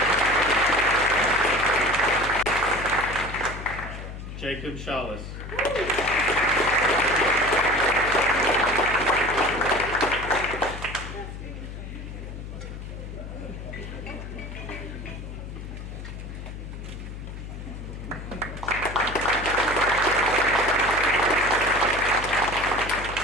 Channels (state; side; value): noise; left; hum, 10 dB below the sound